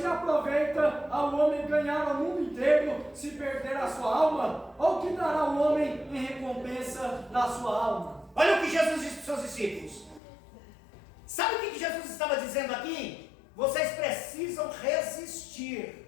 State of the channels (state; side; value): drops out; right; at 10.2 s